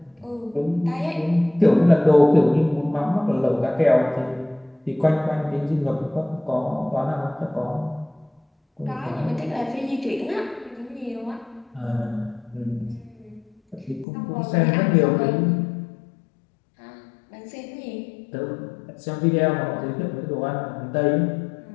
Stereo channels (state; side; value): drops out; right; at 14.1 s